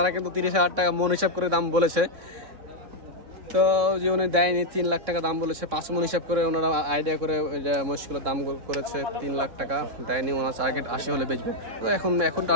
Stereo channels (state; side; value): late; left; 3.6 ms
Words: কিন্তু 30,000 টাকা মন হিসাব করে দাম বলেছে। তো যে উনি দেয়নি 3 লাখ টাকা দাম বলেছে, 5 মন হিসাব করে ওনারা আইডিয়া করে মহিষগুলোর দাম করেছে 3 লাখ টাকা দেয়নি। ওনার টার্গেট 80 হলে বেচবে। তো এখন